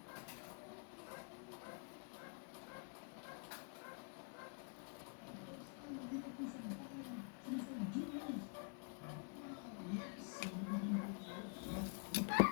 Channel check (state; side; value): quieter; right; 39.7 dB